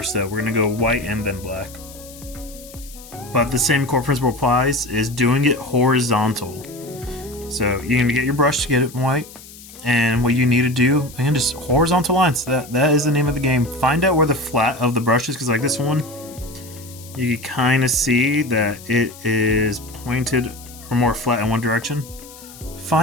though. We're going to go white and then black. But the same core principle applies, is doing it horizontal. So you're going to get your brush to get it white. And what you need to do, again, just horizontal lines. That is the name of the game. Find out where the flat of the brush is, because like this one, you can kind of see that it is pointed or more flat in one direction.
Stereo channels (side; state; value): left; noise; hiss, 19 dB below the sound